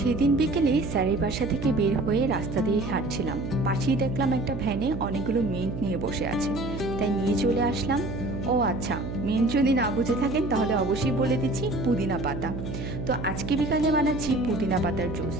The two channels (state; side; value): noise; right; hum, 6 dB below the sound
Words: বিকেলে স্যারের বাসা থেকে বের হয়ে রাস্তা দিয়ে হাঁটছিলাম, পাশেই দেখলাম একটা ভ্যানে অনেকগুলো মিন্ট নিয়ে বসে আছে, তাই নিয়ে চলে আসলাম। ও আচ্ছা, মিন্ট যদি না বুঝে থাকেন তাহলে অবশ্যই বলে দিচ্ছি পুদিনা পাতা। তো আজকে বিকালে বানাচ্ছি পুদিনা পাতার জুস।